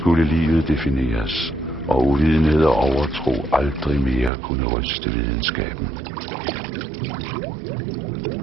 livet defineres, og uvidenhed og overtro aldrig mere kunne ryste videnskaben.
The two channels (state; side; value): drops out; left; at 4.3 s